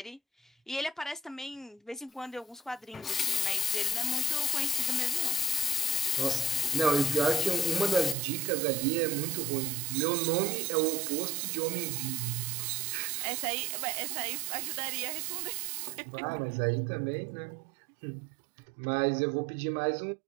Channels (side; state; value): left; drops out; at 8.2 s